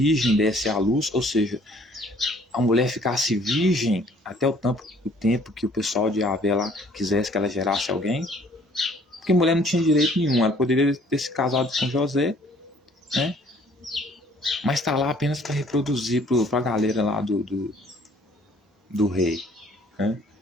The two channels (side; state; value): both; normal; correlation 0.58